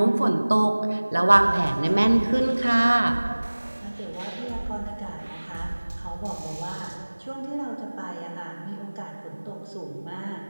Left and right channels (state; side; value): inverted; both; correlation -1.00